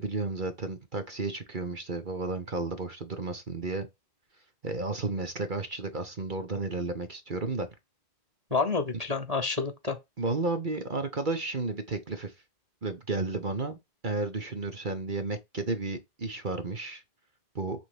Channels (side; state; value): left; late; 1.8 ms